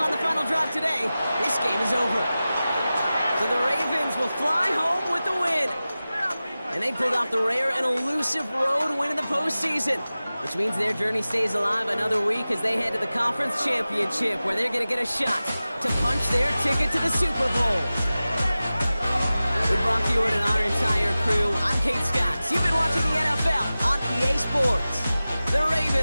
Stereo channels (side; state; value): both; inverted; correlation -0.96